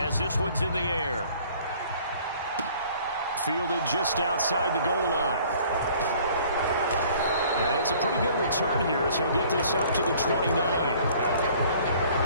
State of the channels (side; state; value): both; inverted; correlation -0.54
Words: this one's in the air. Fielded just outside the goal line. And it's a pretty good return here as he'll get this up to the 29.